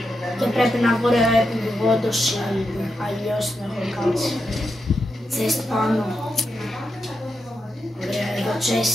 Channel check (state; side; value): normal; both; correlation 0.86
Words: Και πρέπει να βγω επιβιβόντως ή αλλιώς την έχω κάτσει. Chest πάνω. Ωραία, εδώ